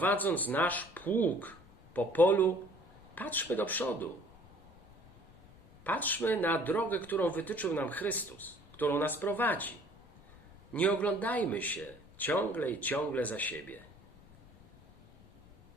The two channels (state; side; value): noise; left; rumble, 23 dB below the sound